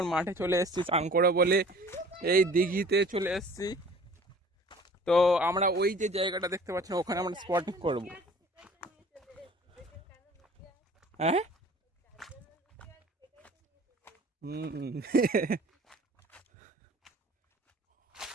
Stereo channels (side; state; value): both; normal; correlation 0.48